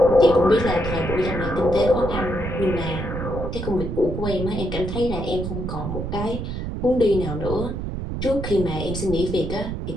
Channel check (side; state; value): right; noise; rumble, 5 dB below the sound